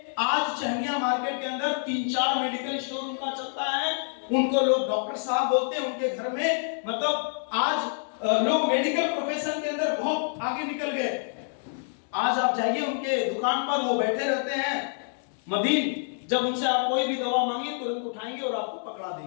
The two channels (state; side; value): silent; right; digital silence